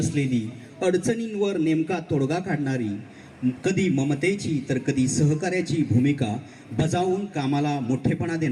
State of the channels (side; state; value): both; identical; correlation 1.00